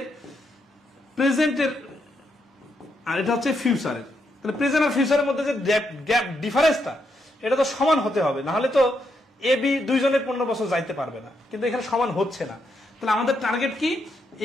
প্রেজেন্টের আর এটা হচ্ছে ফিউচারের। তাহলে প্রেজেন্ট আর ফিউচারের মধ্যে যে গ্যাপ ডিফারেন্সটা, এটা তো সমান হতে হবে, না হলে তো এ বি দুইজনের 15 বছর যাইতে পারবে না। কিন্তু এখানে সমান হচ্ছে না। তাহলে আমাদের টার্গেট কি?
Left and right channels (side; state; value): both; normal; correlation 0.79